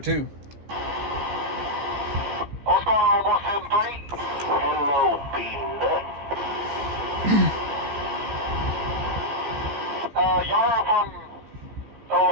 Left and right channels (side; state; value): left; late; 15 ms